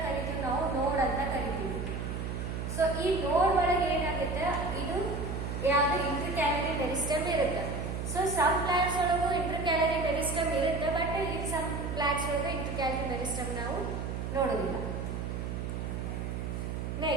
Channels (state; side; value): noise; right; hum, 4 dB below the sound